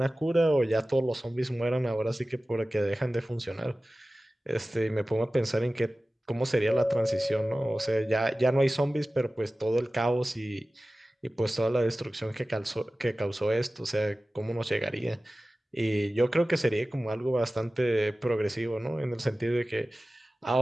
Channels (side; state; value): both; normal; correlation 0.96